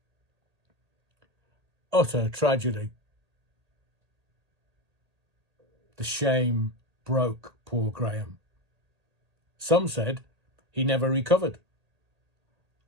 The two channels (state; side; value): late; left; 1.8 ms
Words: Utter tragedy. The shame broke poor Graham. Some said he never recovered.